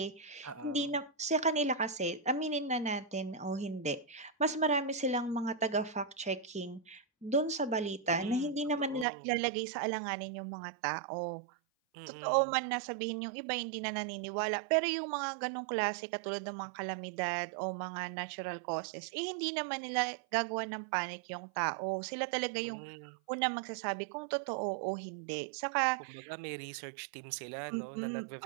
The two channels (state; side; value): drops out; left; at 9.1 s